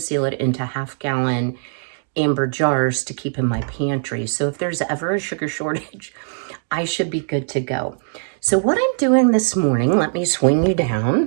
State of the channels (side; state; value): left; silent; digital silence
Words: it into half-gallon amber jars to keep in my pantry. So if there's ever a sugar shortage, I should be good to go. So what I'm doing this morning, let me swing you